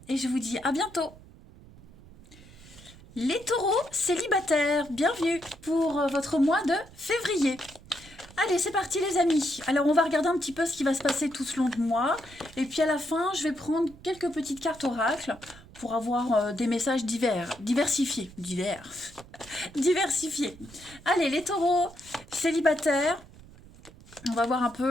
et je vous dis à bientôt. Les taureaux célibataires, bienvenue pour votre mois de février. Allez, c'est parti les amis. Alors, on va regarder un petit peu ce qui va se passer tout ce long de mois. Et puis à la fin, je vais prendre quelques petites cartes oracles pour avoir des messages diversifiés. Diversifiés. Allez, les taureaux célibataires. On va voir un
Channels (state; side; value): noise; right; rumble, 21 dB below the sound